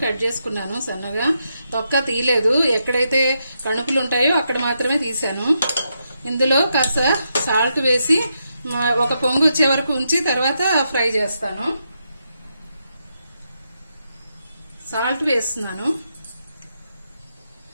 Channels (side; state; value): both; inverted; correlation -0.82